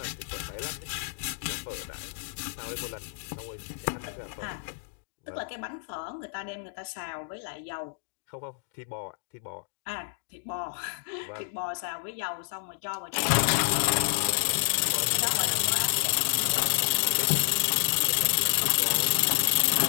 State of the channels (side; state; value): right; silent; digital silence